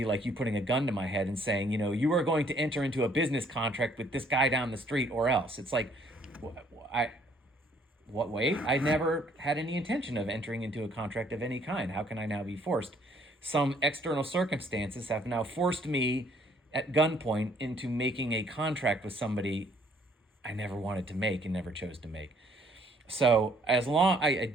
like you putting a gun to my head and saying, you are going to enter into a business contract with this guy down the street or else. It's like, wait, I never had any intention of entering into a contract of any kind. How can I now be forced? Some external circumstances have now forced me at gunpoint into making a contract with somebody I never wanted to make and never chose to make. So I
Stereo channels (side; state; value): both; normal; correlation 0.63